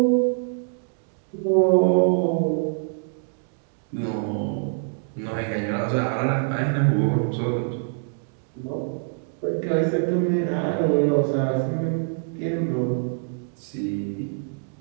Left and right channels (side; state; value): left; silent; digital silence